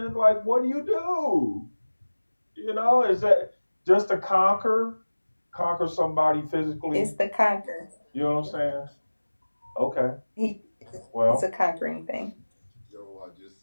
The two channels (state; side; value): inverted; both; correlation -1.00